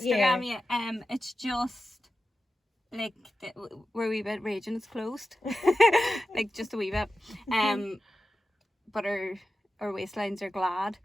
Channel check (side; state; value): both; normal; correlation 0.92